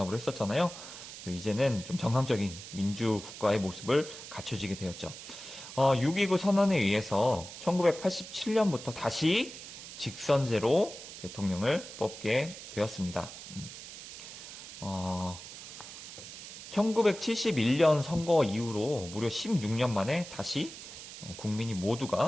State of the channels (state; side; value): noise; right; hiss, 13 dB below the sound